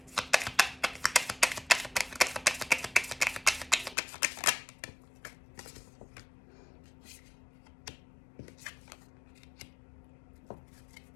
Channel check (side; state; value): right; drops out; at 4.0 s